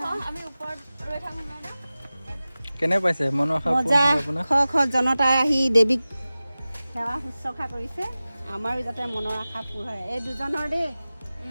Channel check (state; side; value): inverted; both; correlation -0.96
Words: আমি ওপৰত ৰৈ থাকোঁ। কেনে পাইছে মনৰ আশা? খ জনতাই আহি দেৱীক সেৱা শুশ্ৰূষা কৰিছে। আমাৰো যাতে মনৰ আশা পূৰ হয়। এই দুজনৰ দেই।